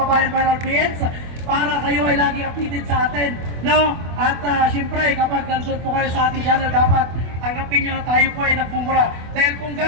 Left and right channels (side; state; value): left; late; 24 ms